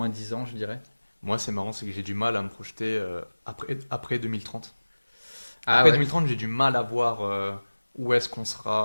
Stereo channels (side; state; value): both; inverted; correlation -1.00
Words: 10 ans, je dirais. Moi, c'est marrant, c'est que j'ai du mal à me projeter après 2030. Ah Après ouais. 2030, j'ai du mal à voir où est-ce qu'on